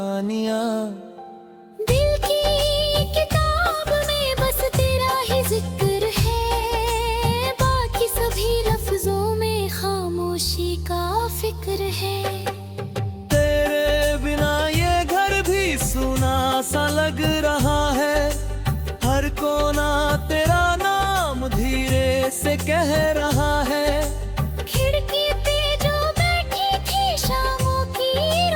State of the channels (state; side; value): identical; both; correlation 1.00